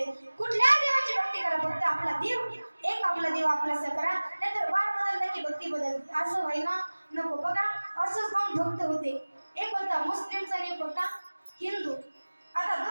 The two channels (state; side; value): inverted; both; correlation -1.00